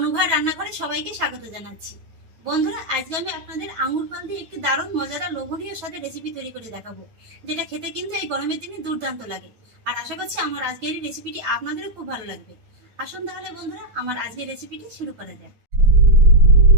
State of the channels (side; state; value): left; late; 9.3 ms